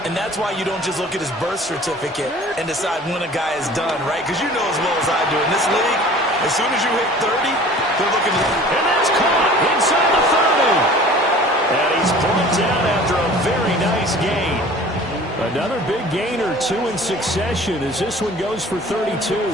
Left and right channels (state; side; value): normal; both; correlation 0.46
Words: And that's why you don't just look at his birth certificate and decide when a guy is done, right? Because you know as well as I do, in this league, as soon as you hit 30, they're looking to... And that's caught inside the 30. And he's brought down after a very nice gain. Another big gain or two in succession as this one goes for 32.